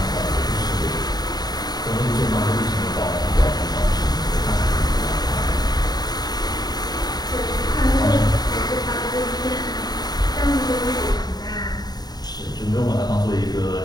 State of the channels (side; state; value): right; late; 0.19 ms